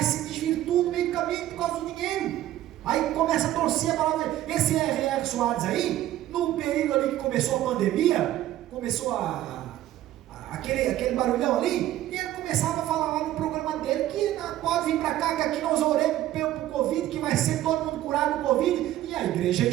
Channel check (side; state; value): left; quieter; 13.8 dB